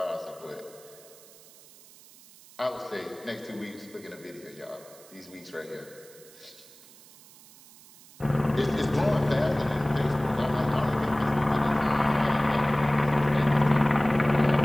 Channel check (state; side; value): noise; right; hiss, 23 dB below the sound